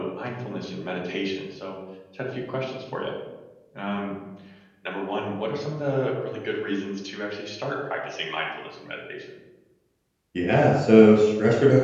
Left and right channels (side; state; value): both; identical; correlation 1.00